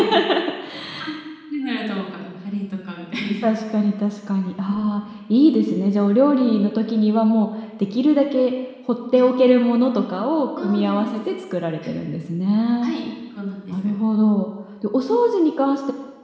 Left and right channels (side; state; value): both; identical; correlation 1.00